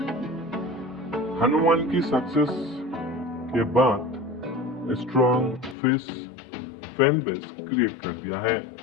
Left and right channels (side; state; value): right; drops out; at 5.8 s